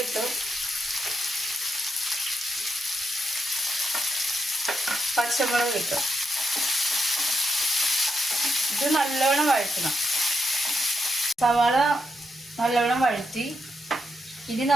ഇട്ടു. പച്ചമുളക് ഇട്ടു. ഇത് നല്ലവണ്ണം വഴറ്റണം. സവാള നല്ലവണ്ണം വഴറ്റി ഇനി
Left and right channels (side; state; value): both; normal; correlation 0.82